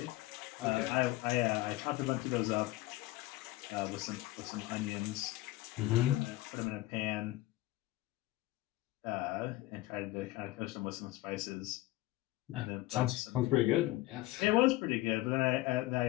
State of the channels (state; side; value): quieter; right; 17.9 dB